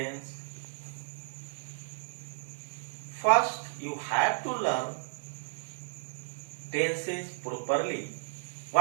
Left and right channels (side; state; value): left; silent; 56 dB below the other